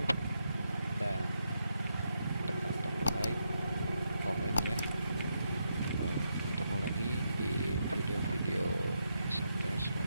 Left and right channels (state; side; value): inverted; both; correlation -0.82